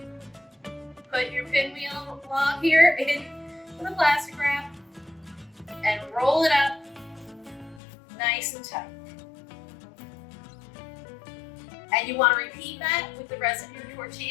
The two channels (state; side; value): drops out; right; at 7.8 s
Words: put your pinwheel log here in the plastic wrap and roll it up nice and tight. And you want to repeat that with the rest of your